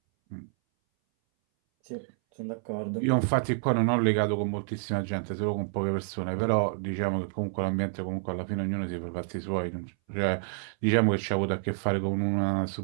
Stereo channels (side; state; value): left; silent; 59 dB below the other